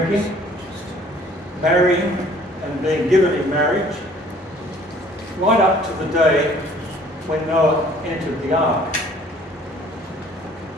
marrying and being given in marriage, right up to the day when Noah entered the ark.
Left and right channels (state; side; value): normal; both; correlation 0.55